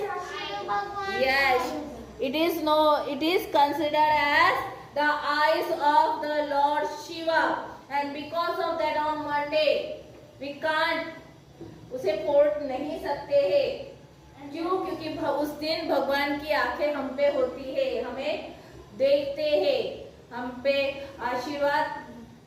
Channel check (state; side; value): identical; both; correlation 1.00